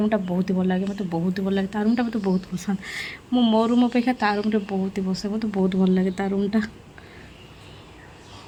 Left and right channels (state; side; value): identical; both; correlation 1.00